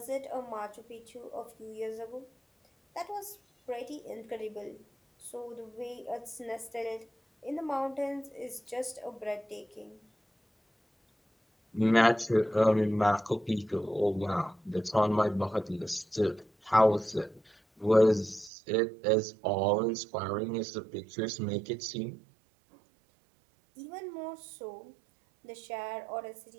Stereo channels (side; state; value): left; drops out; at 18.5 s